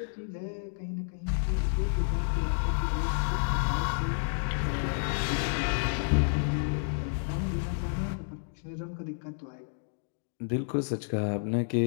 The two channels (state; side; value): silent; right; digital silence